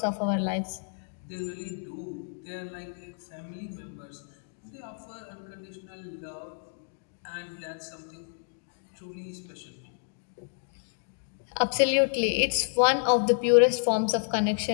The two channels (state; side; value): silent; right; digital silence